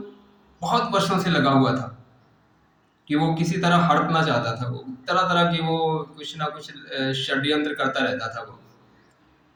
बहुत वर्षों से लगा हुआ था कि वो किसी तरह हड़पना चाहता था। वो तरह तरह की वो कुछ ना कुछ षड्यंत्र करता रहता था। वो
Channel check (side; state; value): both; identical; correlation 1.00